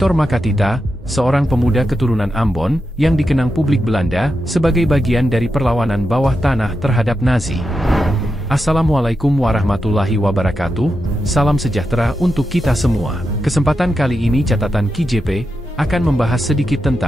Makatita, seorang pemuda keturunan Ambon, yang dikenang publik Belanda sebagai bagian dari perlawanan bawah tanah terhadap Nazi. Assalamualaikum warahmatullahi wabarakatuh, salam sejahtera untuk kita semua. Kesempatan kali ini catatan KJP akan membahas sedikit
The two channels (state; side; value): normal; both; correlation 0.88